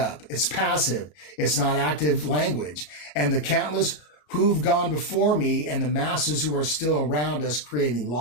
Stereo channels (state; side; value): late; right; 33 ms